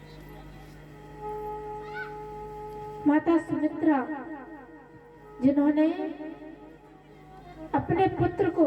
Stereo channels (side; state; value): both; identical; correlation 1.00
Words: माता सुमित्रा, जिन्होंने अपने पुत्र को